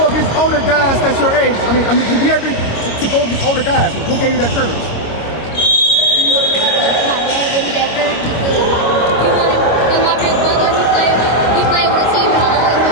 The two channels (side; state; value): right; late; 26 ms